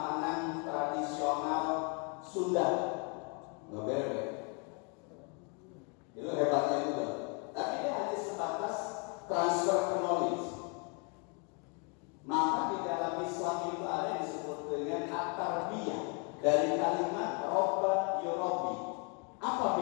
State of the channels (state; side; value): quieter; right; 35.7 dB